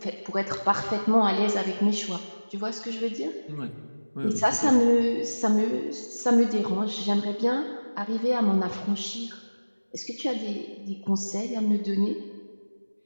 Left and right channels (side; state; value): both; inverted; correlation -1.00